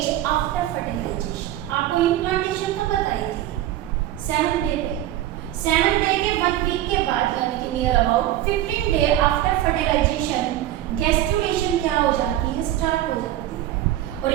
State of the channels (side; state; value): left; quieter; 13.3 dB